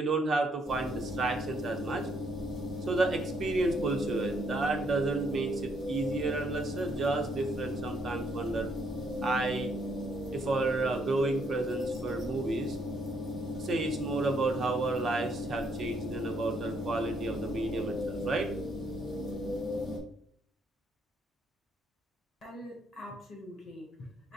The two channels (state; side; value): normal; both; correlation 0.71